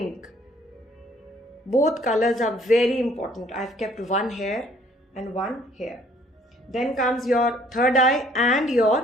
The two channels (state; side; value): normal; both; correlation 0.60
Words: Both colors are very important. I've kept one here and one here. Then comes your third eye and your